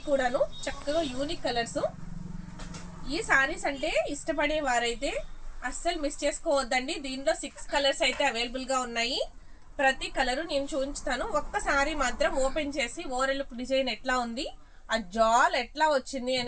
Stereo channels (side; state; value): both; identical; correlation 1.00